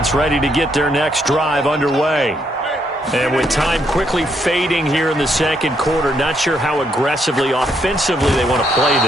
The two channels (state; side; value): normal; both; correlation 0.75